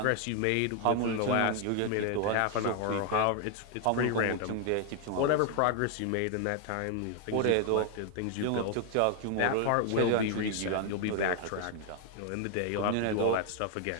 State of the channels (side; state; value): both; different; correlation 0.00